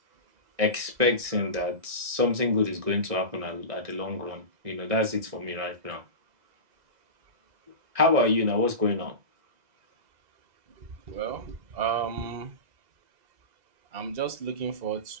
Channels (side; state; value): left; late; 2.0 ms